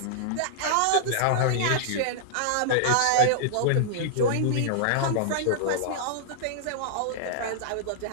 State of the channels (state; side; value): different; both; correlation -0.01